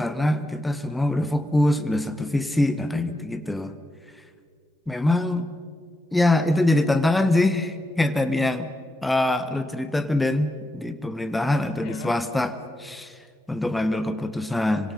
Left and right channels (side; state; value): both; normal; correlation 0.87